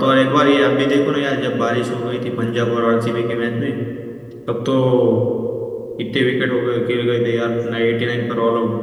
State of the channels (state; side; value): identical; both; correlation 1.00